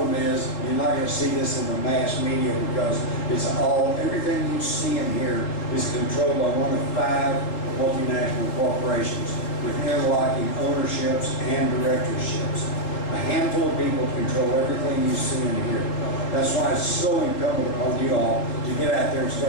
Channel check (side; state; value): right; late; 3.8 ms